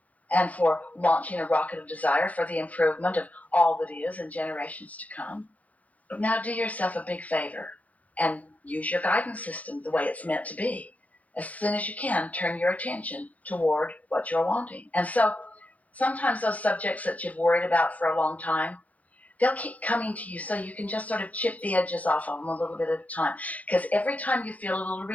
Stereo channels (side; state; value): right; late; 0.072 ms